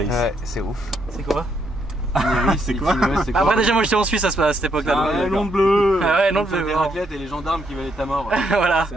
Ouais, c'est ouf. C'est quoi? Itinéris, c'est quoi? Après, déjà, moi j'étais en Suisse à cette époque-là. Ah, donc, ouais, nom bleu. Ah ouais, non, Donc, bleu. les raclettes et les gendarmes qui veulent ta mort. Voilà. C'est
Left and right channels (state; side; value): normal; both; correlation 0.76